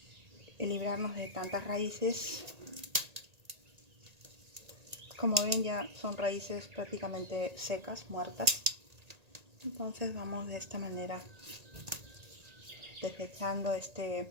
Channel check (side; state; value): left; late; 1.8 ms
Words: librarnos de tantas raíces. Como ven, ya son raíces prácticamente secas, muertas. Entonces vamos de esta manera desechando